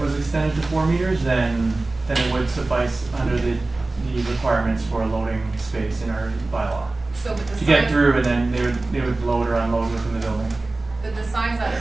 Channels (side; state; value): left; quieter; 3.1 dB